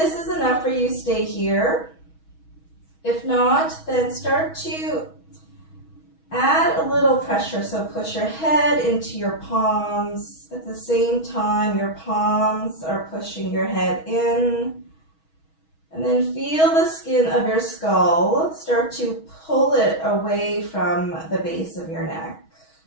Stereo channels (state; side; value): late; right; 6.2 ms